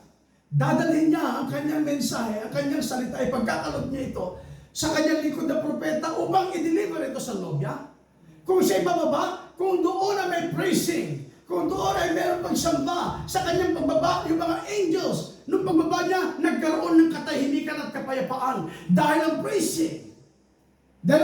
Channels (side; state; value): both; identical; correlation 1.00